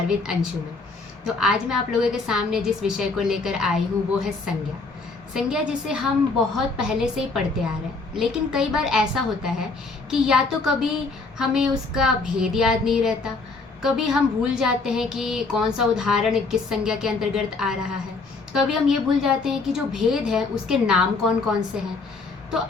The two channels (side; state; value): right; quieter; 3.9 dB